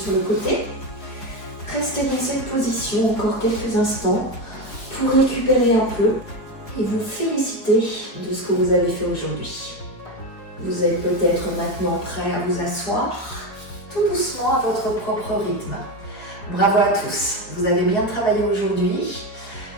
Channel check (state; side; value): late; right; 4.7 ms